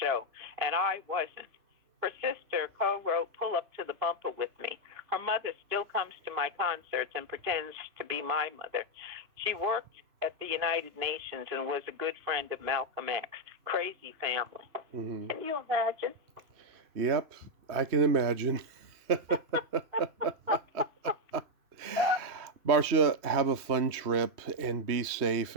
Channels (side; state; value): left; late; 3.1 ms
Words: show, and I wasn't. Her sister co-wrote Pull Up to the Bumper with me. Her mother still comes to my concerts and pretends to be my mother. She worked at the United Nations and was a good friend of Malcolm X. Crazy family. Can you imagine? Yep, I can imagine. Marcia, have a fun trip and be safe,